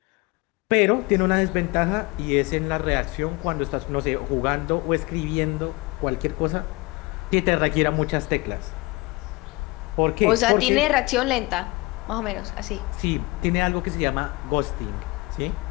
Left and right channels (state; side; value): quieter; right; 24.1 dB